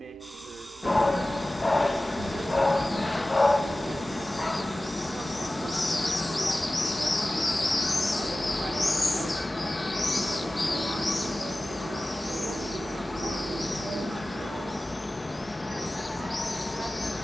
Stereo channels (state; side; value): normal; both; correlation 0.97